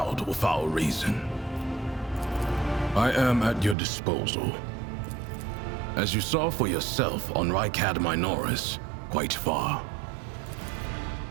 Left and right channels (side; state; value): left; drops out; at 3.8 s